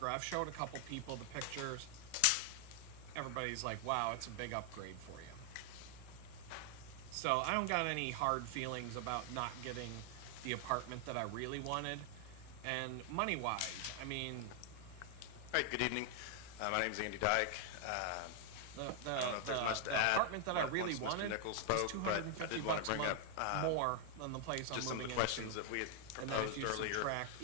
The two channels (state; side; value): different; both; correlation 0.00